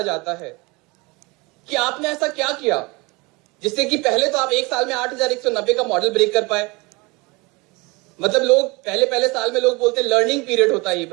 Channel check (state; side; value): quieter; left; 25.8 dB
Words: जाता है कि आपने ऐसा क्या किया जिससे कि पहले तो आप एक साल में 8190 का मॉडल ब्रेक कर पाए। मतलब लोग पहले साल में लोग बोलते हैं लर्निंग पीरियड होता है ये,